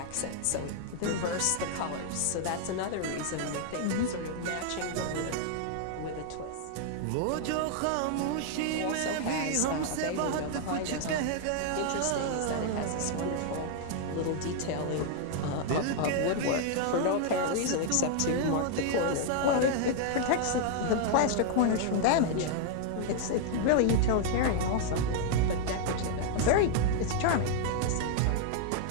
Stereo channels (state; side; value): different; both; correlation 0.00